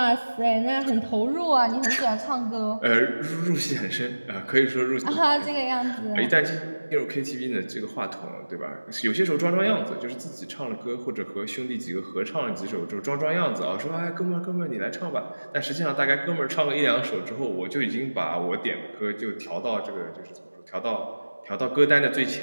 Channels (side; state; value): both; inverted; correlation -1.00